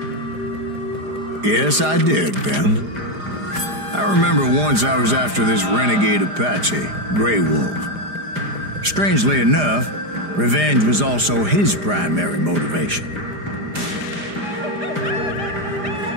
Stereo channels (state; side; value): late; left; 4.9 ms